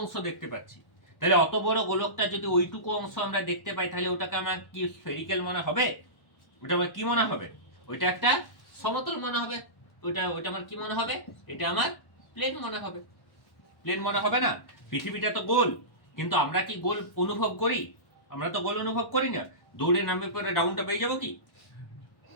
দেখতে পাচ্ছি? তাহলে অত বড় গোলকটা যদি ওইটুকু অংশ আমরা দেখতে পাই, তাহলে ওটাকে আমার কি স্ফেরিক্যাল মনে হবে? ওটা আমার কি মনে হবে? ওইটা একটা সমতল মনে হবে। ওইটা আমার কি মনে হবে? এটা আমার প্লেন মনে হবে। প্লেন মনে হবে না? পৃথিবীটা তো গোল, কিন্তু আমরা কি গোল অনুভব করি? আমরা তো গোল অনুভব করি না। দৌড়ে নামবে পরে ডাউনটা পেয়ে যাবো কি?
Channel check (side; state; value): right; late; 1.1 ms